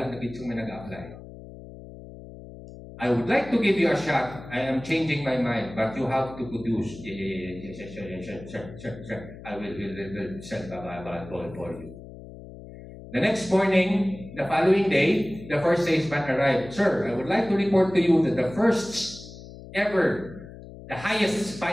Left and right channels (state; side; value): noise; left; hum, 15 dB below the sound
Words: na bitsong may nag-apply. I would like to give you a shot. I am changing my mind, but you have to produce. Sure. I will send a ball for you. The next morning, the following day, the first salesman arrived. Sir, I would like to report to you that the first ever, the highest